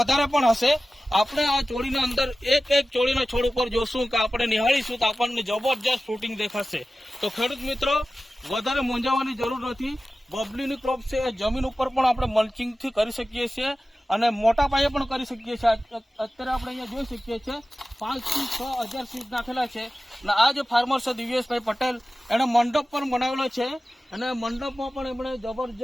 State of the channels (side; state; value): both; normal; correlation 0.95